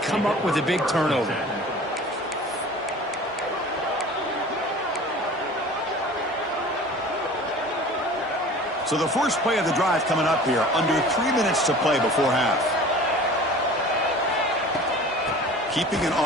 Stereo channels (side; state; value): both; normal; correlation 0.42